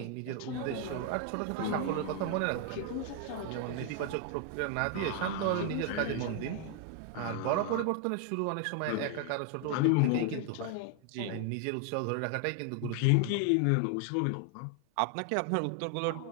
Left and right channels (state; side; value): different; both; correlation 0.00